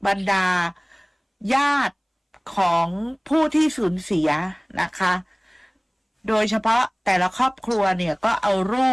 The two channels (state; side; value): identical; both; correlation 1.00